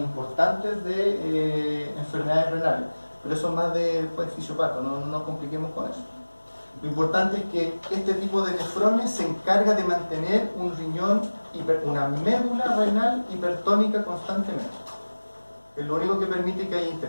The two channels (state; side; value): inverted; both; correlation -1.00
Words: de enfermedades renales. Pero eso es más de fisiopata, no nos compliquemos con eso. Lo importante es que este tipo de nefrones se encarga de mantener un riñón, una médula renal hipertónica constantemente. Es lo único que permite que haya